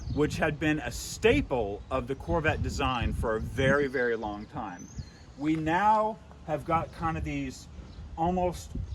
which had been a staple of the Corvette design for a very, very long time. We now have got kind of these almost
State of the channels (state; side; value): identical; both; correlation 1.00